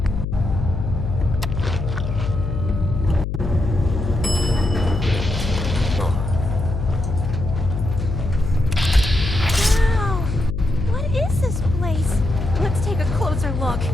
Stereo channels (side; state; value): left; noise; hum, 3 dB below the sound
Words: Wow! What is this place? Let's take a closer look.